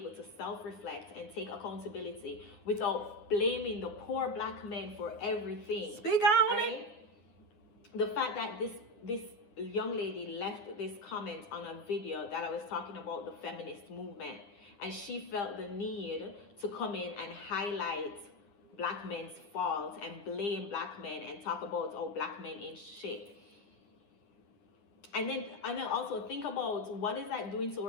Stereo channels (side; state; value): right; late; 9.4 ms